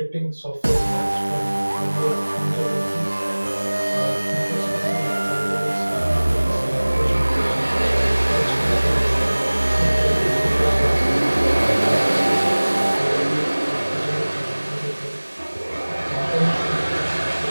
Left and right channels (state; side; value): inverted; both; correlation -1.00